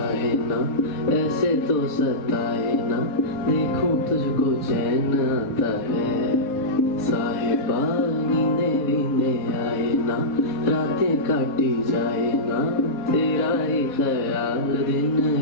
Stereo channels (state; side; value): late; right; 3.9 ms